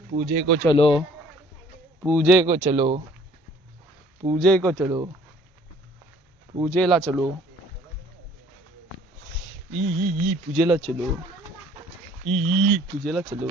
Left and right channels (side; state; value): both; normal; correlation 0.55